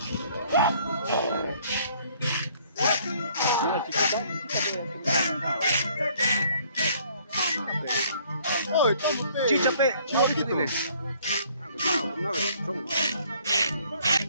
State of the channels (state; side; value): inverted; both; correlation -0.60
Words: ¡Ay, estamos chicha, pe, chicha, chiquito! dile. Ah, pues, no, son.